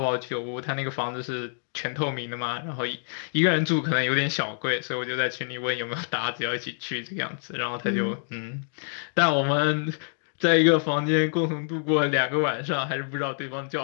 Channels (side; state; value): right; silent; 60 dB below the other